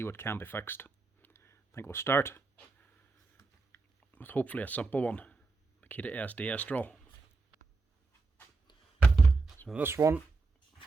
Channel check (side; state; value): left; quieter; 3.9 dB